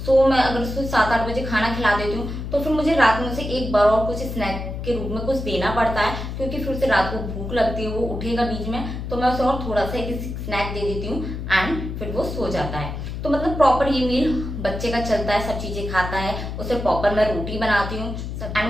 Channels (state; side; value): noise; left; hum, 6 dB below the sound